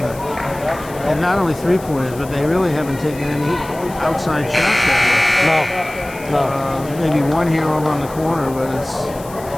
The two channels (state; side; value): noise; left; hiss, 19 dB below the sound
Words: And not only 3-pointers, but they really haven't taken any outside shots that No. much. Maybe one here over on the corner, but it's,